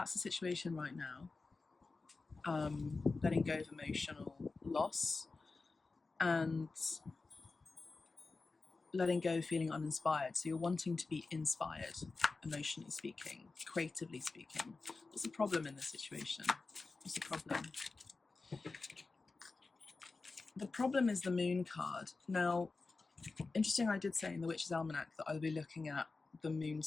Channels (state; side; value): quieter; right; 3.9 dB